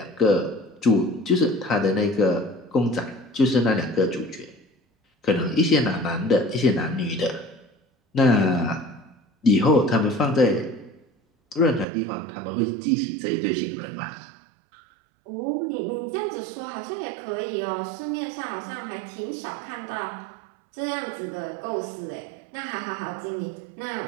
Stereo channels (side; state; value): left; drops out; at 11.9 s